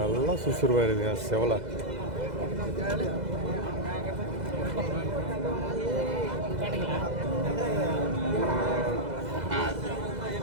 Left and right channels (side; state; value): left; late; 2.0 ms